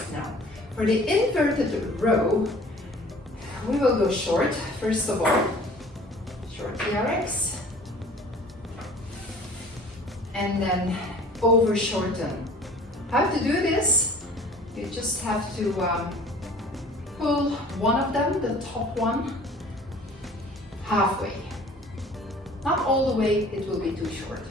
Now, for the inverted row, we will go short, first of all, short TRX. And then over shorten. How to do this? You just have to pull one of them, the top one, halfway. Not all the way, it will be too short.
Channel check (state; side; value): normal; both; correlation 0.49